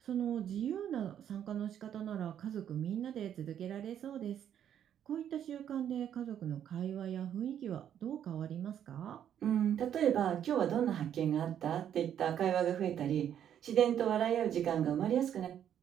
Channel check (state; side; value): quieter; left; 9.7 dB